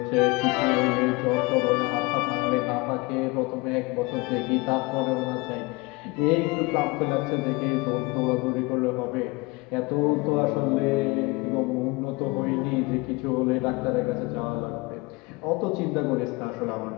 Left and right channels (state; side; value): quieter; right; 24.7 dB